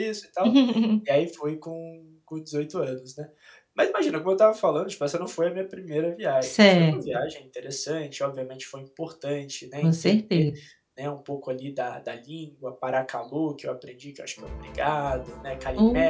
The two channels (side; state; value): both; identical; correlation 1.00